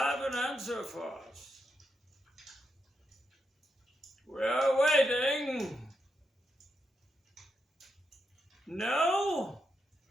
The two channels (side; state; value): both; normal; correlation 0.84